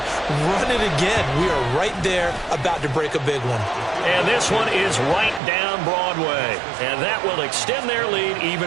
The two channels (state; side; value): drops out; left; at 5.4 s